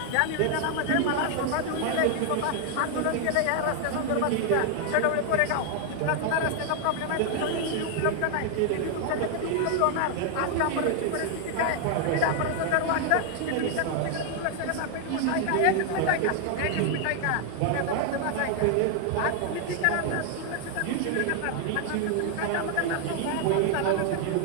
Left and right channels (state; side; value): different; both; correlation 0.00